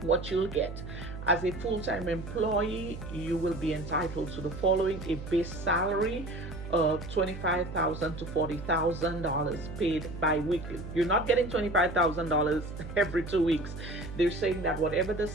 What you'll get: as a full-time employee, you will be entitled to the following: a base salary of $25,000 to $40,000 paid bi-weekly. You're not getting $25,000 every 2 weeks. They're saying that whatever the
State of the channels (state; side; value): noise; right; hum, 10 dB below the sound